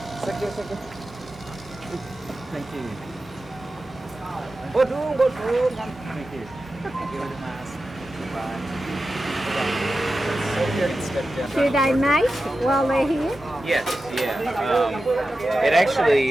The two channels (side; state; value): both; normal; correlation 0.92